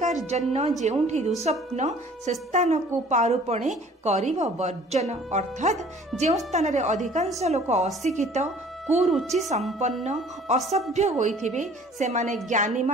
जेउठी दुस्वप्न से स्थान को पारुपणे करिब वर्जन। अर्थात जेउ स्थान रे अधिकांश लोक अशिक्षित कुरुचि संपन्न असभ्य होइथिबे सेमाने ज्ञानी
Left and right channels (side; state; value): both; normal; correlation 0.52